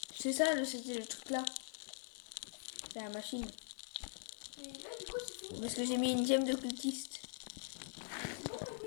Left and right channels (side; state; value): right; silent; digital silence